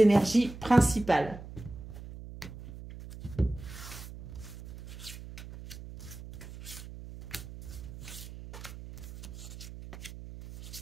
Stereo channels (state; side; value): noise; right; hum, 13 dB below the sound